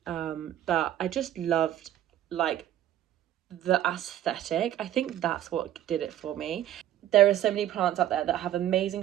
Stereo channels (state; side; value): quieter; left; 12.1 dB